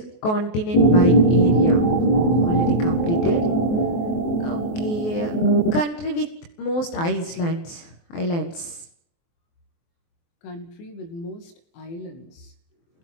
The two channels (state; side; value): late; right; 23 ms